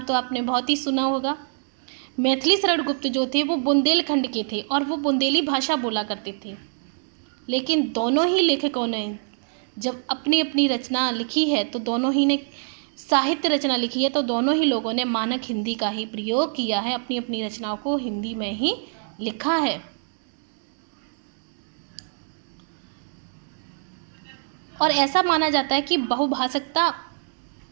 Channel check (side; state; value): left; silent; digital silence